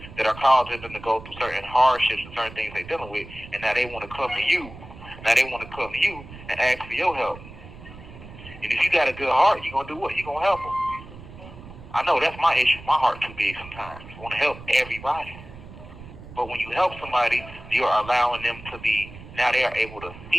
That are causing them to go through certain hardships and certain things they're dealing with, and now they want to come to you. Now they want to come to you and ask for your help. And if you got a good heart, you're going to do what? You're going to help them. I know that's my issue. My heart too big sometimes. I want to help everybody. But when you help somebody, you are allowing them to be, now they are able to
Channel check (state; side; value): noise; right; rumble, 16 dB below the sound